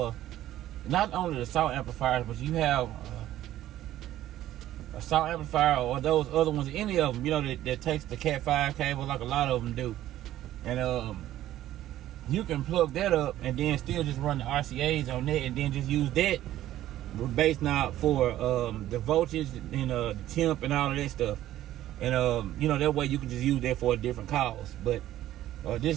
not only the SAW amplifiers, but you have a SAW amplifier or those other ones, any of them, that takes the Cat 5 cable, like a lot of them do, and you can plug that up and then still just run the RCAs on that, and then just use that bass knob for the voltage and the temp and all of that stuff. And that way you can just use that for a different cause. But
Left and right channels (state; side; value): quieter; left; 13.5 dB